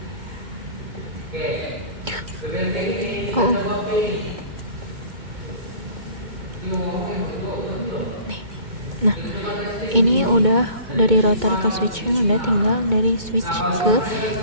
Nah, ini udah dari router ke switchnya, udah tinggal dari switch ke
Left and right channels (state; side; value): late; left; 2.2 ms